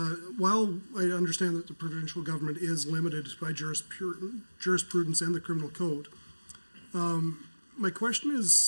while I understand that the provincial government is limited by jurisprudence and the criminal code, my question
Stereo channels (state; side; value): inverted; both; correlation -1.00